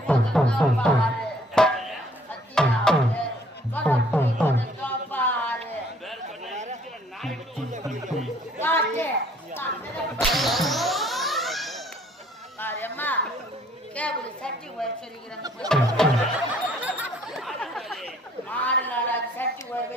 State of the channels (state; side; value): normal; both; correlation 0.59